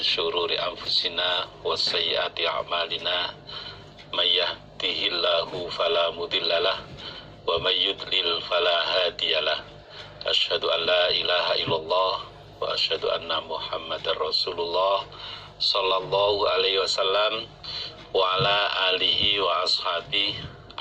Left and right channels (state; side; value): identical; both; correlation 1.00